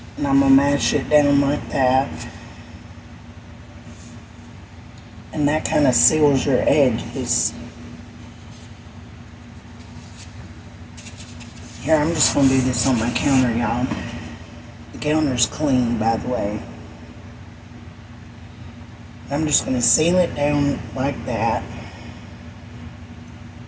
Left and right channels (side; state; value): both; identical; correlation 1.00